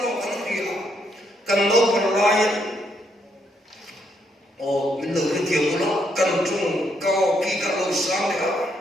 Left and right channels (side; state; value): both; normal; correlation 0.75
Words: con cái gì cần đâu cần lại mình được cái điều của nó cần chung cao kỳ cả lâu sáng đấy